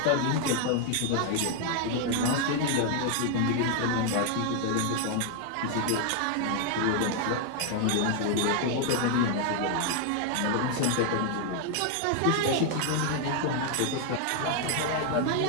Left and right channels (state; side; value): different; both; correlation 0.00